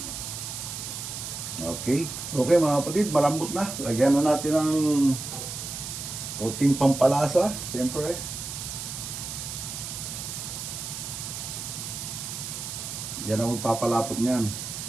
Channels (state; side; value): noise; right; hiss, 7 dB below the sound